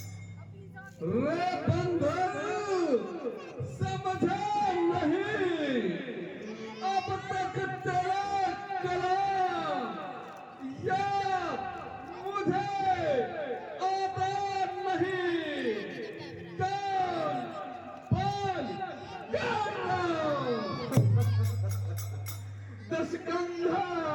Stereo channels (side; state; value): both; identical; correlation 1.00